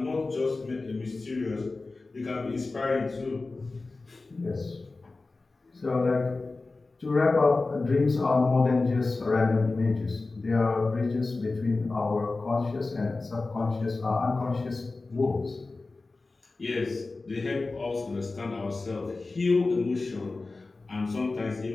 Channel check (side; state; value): right; quieter; 3.5 dB